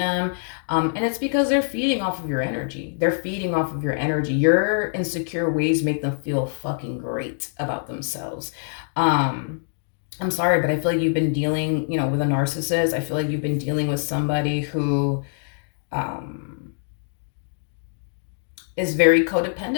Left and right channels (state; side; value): silent; right; digital silence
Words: And it's because they're feeding off of your energy. They're feeding off of your energy. Your insecure ways make them feel fucking great about themselves. I'm sorry, but I feel like you've been dealing, with a narcissist. I feel like you've been dealing with somebody who, um, is very